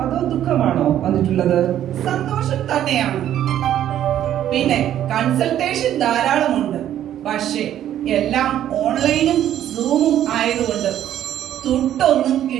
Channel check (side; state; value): left; quieter; 11.4 dB